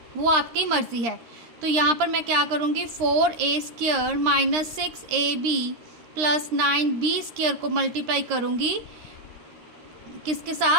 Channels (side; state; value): left; late; 13 ms